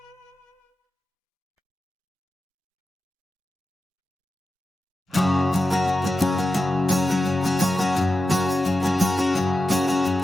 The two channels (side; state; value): both; normal; correlation 0.91